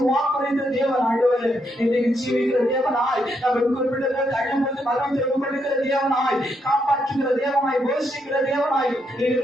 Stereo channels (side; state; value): both; normal; correlation 0.78